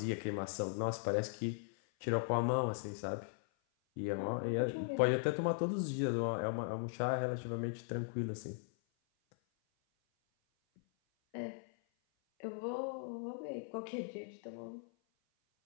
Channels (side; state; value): right; silent; 52 dB below the other